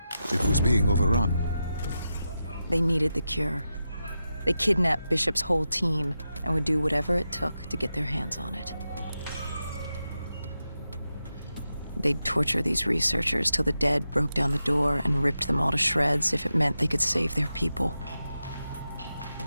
It was being overrun. They needed the cure. They kidnapped Bishop's whole team and would do whatever it took to get their hands on it. They'd torture these researchers till the dead broke down the door and ripped them all to shreds if it meant they could save their people.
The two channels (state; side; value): inverted; both; correlation -0.89